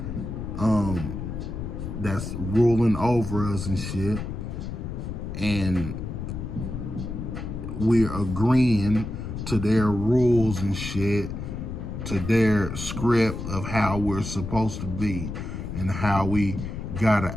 that's ruling over us and shit. And we're agreeing to their rules and shit, to their script of how we're supposed to be and how we gotta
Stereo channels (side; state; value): left; noise; rumble, 6 dB below the sound